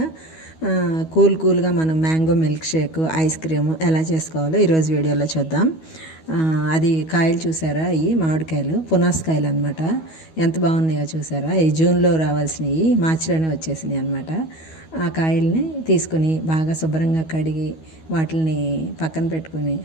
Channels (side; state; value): right; late; 12 ms